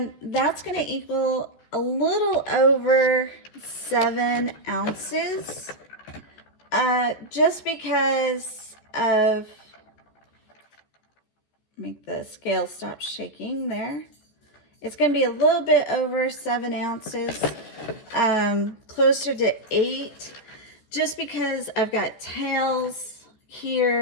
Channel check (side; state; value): right; late; 14 ms